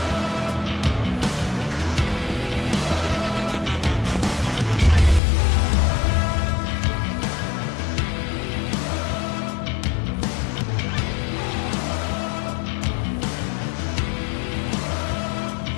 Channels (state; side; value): drops out; right; at 5.2 s